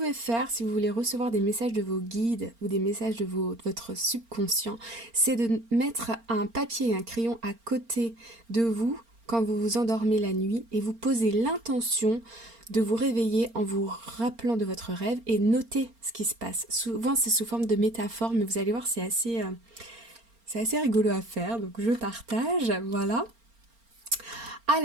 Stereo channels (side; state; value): left; late; 4.3 ms